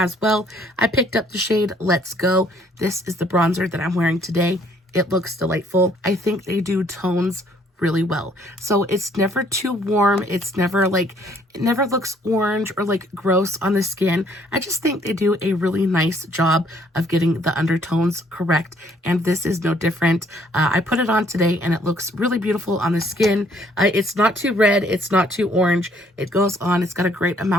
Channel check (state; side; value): normal; both; correlation 0.63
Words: well. I picked up the shade Let's Go. This is the bronzer that I'm wearing today. It looks delightful. I think they do tones really well. So it's never too warm. It's never like, it never looks orange or like gross on the skin. I just think they do a really nice job of getting the undertones correct. And this is no different. I put it on today and it looks really beautiful on the skin. It's not too red. It's not too orange. It goes on. It's got a great